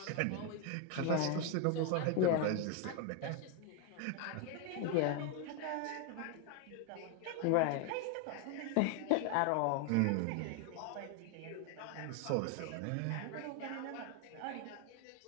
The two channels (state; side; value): different; both; correlation 0.01